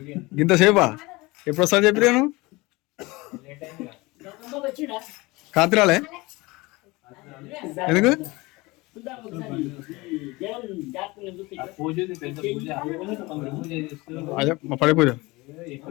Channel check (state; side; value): quieter; right; 22.7 dB